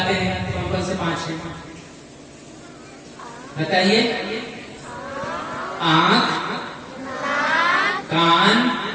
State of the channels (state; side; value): identical; both; correlation 1.00